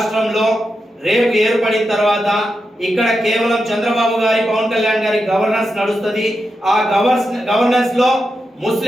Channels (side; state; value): both; normal; correlation 0.88